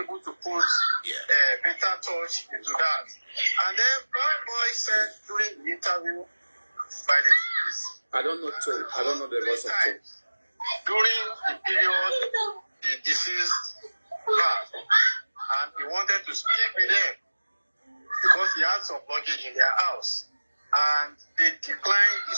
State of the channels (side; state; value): both; inverted; correlation -1.00